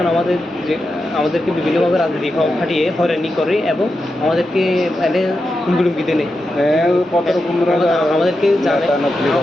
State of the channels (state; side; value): normal; both; correlation 0.88